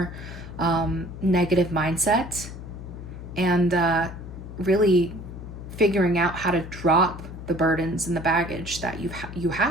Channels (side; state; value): left; noise; hum, 11 dB below the sound